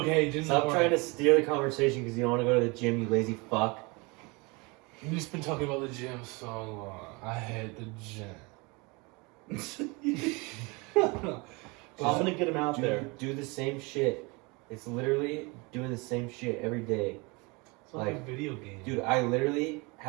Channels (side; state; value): left; quieter; 27.6 dB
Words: just Stop trying to steer the conversation because you don't want to go to the gym, you lazy fuck. We've just been talking about the gym so long. I hate the gym. I'm gonna get him out there. Do the same shit. It's literally doing the same shit every day. It's like a video game. Dude, I literally